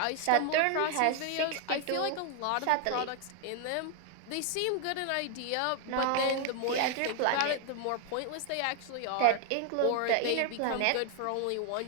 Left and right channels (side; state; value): both; different; correlation 0.00